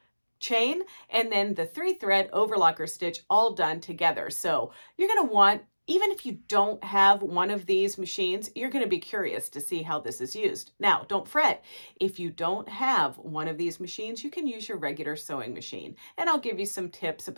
chain and then the 3-thread overlocker stitch all done together. So you're going to want, even if you don't have one of these machines, you're going to be curious to see how this is used. Now, don't fret. If you don't have one of these machines, you can use your regular sewing machine, and I'll give you some tips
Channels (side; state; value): both; inverted; correlation -1.00